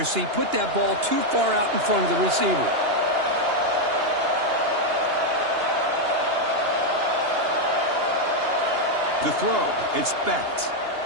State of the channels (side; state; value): left; late; 2.9 ms